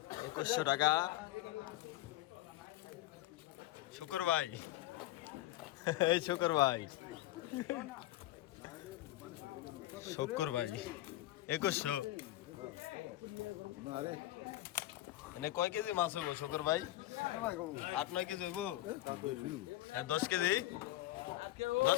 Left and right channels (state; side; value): quieter; right; 15.7 dB